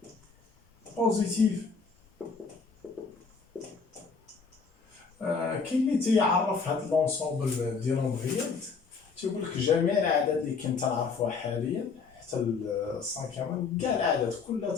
بوزيتيف كاين اللي تيعرف هاد لونسومبل ديال نومبريال تيقول لك جميع الاعداد اللي كنت نعرفوها حاليا حتى السانكيام كاع الاعداد كلها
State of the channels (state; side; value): quieter; right; 5.1 dB